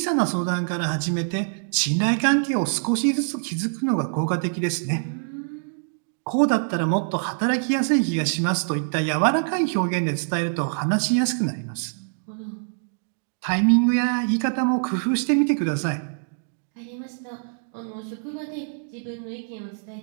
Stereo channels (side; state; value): left; silent; digital silence